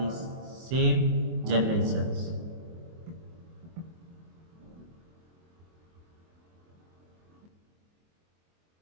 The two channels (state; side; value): late; left; 24 ms